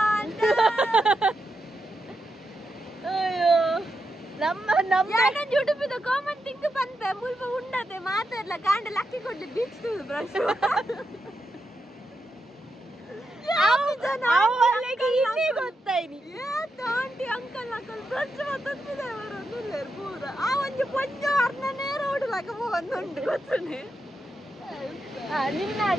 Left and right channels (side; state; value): both; normal; correlation 0.86